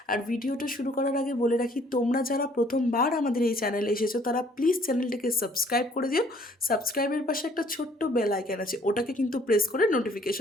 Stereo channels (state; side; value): normal; both; correlation 0.60